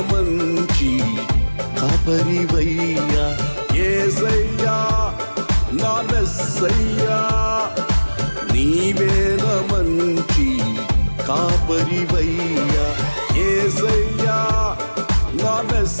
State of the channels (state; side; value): inverted; both; correlation -1.00